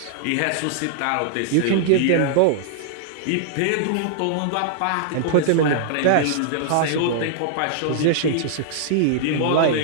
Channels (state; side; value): different; both; correlation -0.01